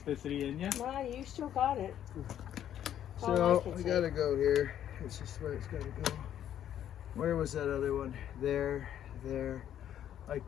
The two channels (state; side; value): quieter; right; 10.6 dB